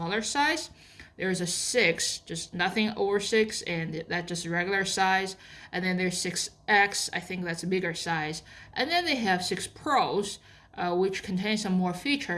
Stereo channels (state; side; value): identical; both; correlation 1.00